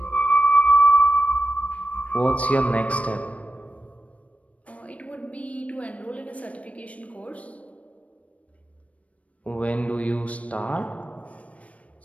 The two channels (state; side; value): late; right; 0.066 ms